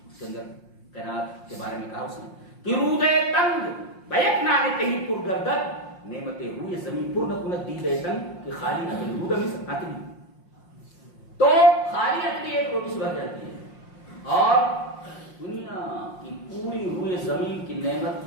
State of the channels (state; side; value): late; right; 5.6 ms